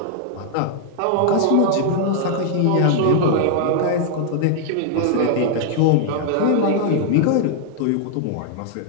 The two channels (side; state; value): both; different; correlation -0.01